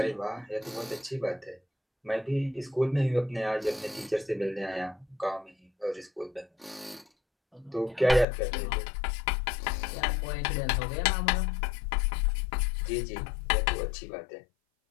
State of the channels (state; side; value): drops out; right; at 8.2 s